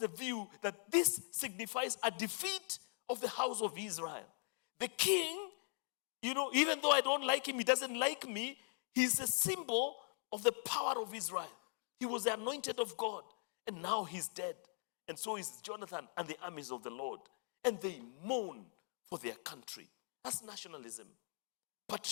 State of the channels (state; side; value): silent; right; 51 dB below the other